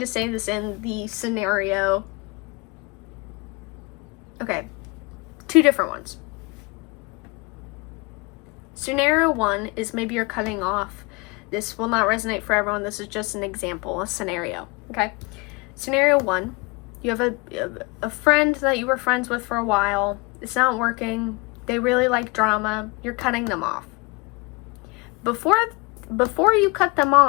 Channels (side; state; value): right; quieter; 27.2 dB